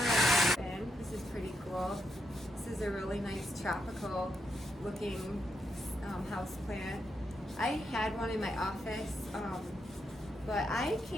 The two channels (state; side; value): normal; both; correlation 0.82